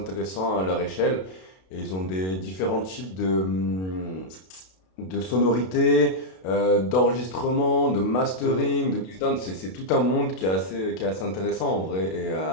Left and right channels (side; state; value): right; late; 32 ms